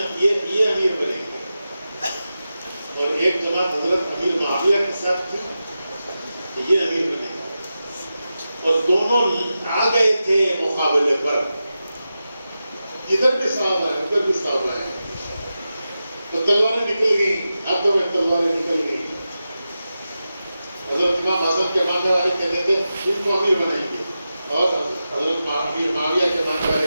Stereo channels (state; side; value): inverted; both; correlation -0.92